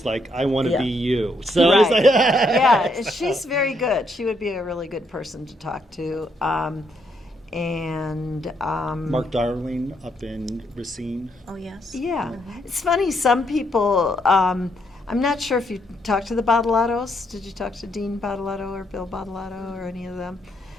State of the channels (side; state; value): both; normal; correlation 0.75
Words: like, I want to Yeah. be you. So I was Right. like, Yeah, she's very good. She would be a really good person to talk to. Mark Darling up in Racine. Oh, yes. Yeah, it's funny. Some people. I'm not sure if you talked to the Bottolatos. Did you talk to Dean Bottolato or Bill Bottolato or any of them?